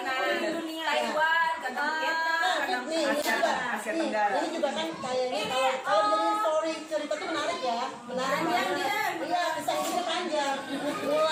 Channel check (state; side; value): identical; both; correlation 1.00